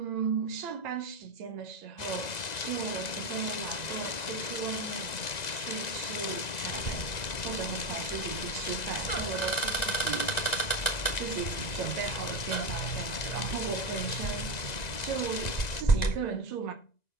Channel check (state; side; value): late; right; 2.0 ms